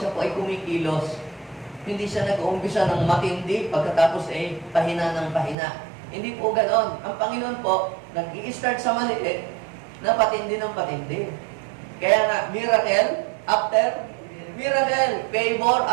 po ay kumikilos. Hindi siya nag-uumpisa ng matindi, pagkatapos ay pahina ng pahina. Hindi po ganoon. Ang Panginoon po, nag-i-start sa maliit, na patindi ng patindi. Kaya nga, miracle after miracle. Favor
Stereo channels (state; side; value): drops out; left; at 5.6 s